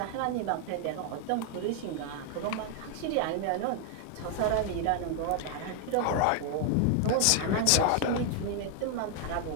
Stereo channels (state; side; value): different; both; correlation 0.00